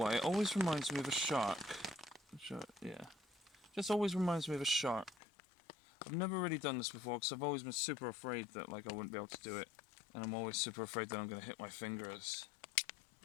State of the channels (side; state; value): right; drops out; at 5.2 s